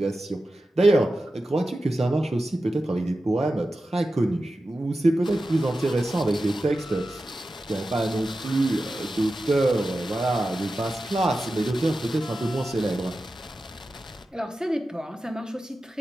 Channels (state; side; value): normal; both; correlation 0.93